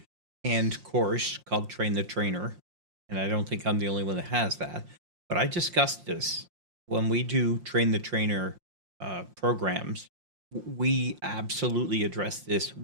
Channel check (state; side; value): late; left; 5.7 ms